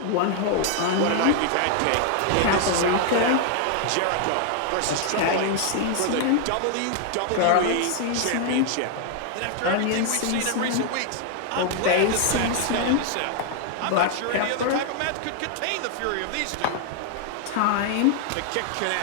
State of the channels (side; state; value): both; different; correlation 0.00